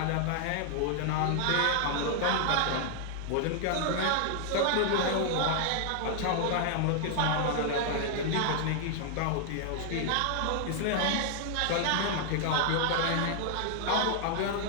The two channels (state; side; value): different; both; correlation 0.00